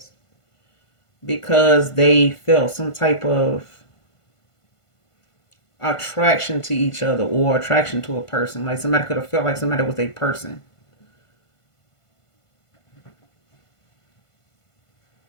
because they felt some type of attraction to each other or attraction to a person. Like somebody could have felt like somebody was a person.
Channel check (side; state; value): right; late; 1.5 ms